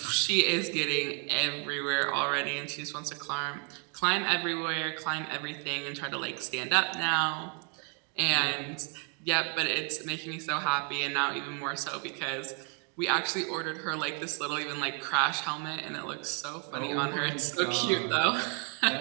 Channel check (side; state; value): left; quieter; 39.2 dB